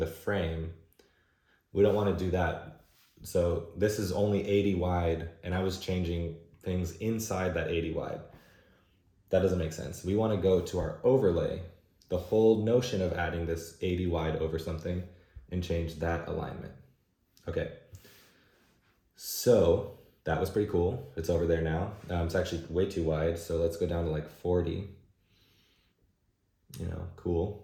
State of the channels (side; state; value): both; identical; correlation 1.00